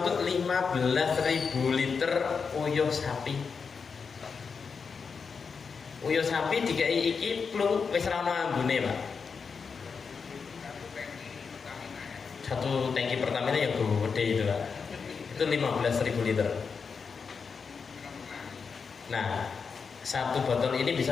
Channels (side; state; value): right; quieter; 5.6 dB